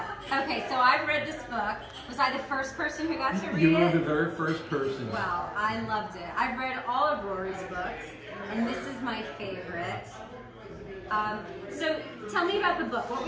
Okay, so I've read this book. Was I the first person who got to read it? You were the very first person. Well, I loved it. I've read all of Rory's books, and this is my favorite. So tell me about the book. What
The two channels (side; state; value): both; identical; correlation 1.00